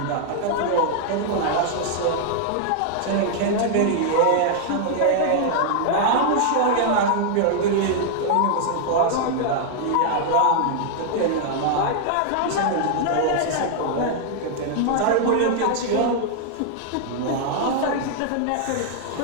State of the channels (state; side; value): different; both; correlation -0.01